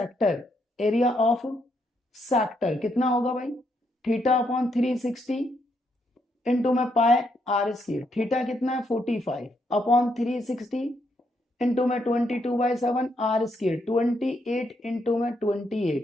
area of sector कितना होगा भाई, थीटा अपॉन 360 इंटू में पाए आर स्क्वायर, थीटा कितना है 45 अपॉन 360 इंटू में 22/7 आर स्क्वायर, 28 इंटू में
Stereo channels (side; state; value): both; normal; correlation 0.77